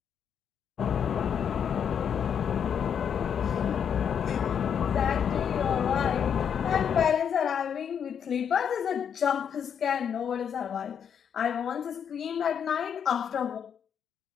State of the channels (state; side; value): quieter; right; 7.9 dB